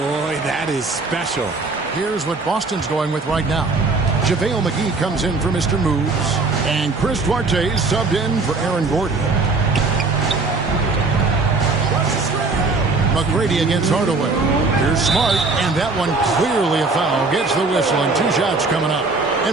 that is special. Here's what Boston's going with right now. JaVale McGee comes in for Mr. Moves. And Chris Duarte is subbed in for Aaron Gordon. McGrady against Hardaway. Here's Smart, and that one clearly a foul. Gets the whistle, and 2 shots coming up.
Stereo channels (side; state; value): left; quieter; 3.8 dB